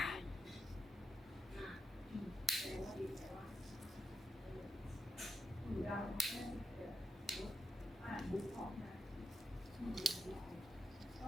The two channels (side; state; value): both; normal; correlation 0.84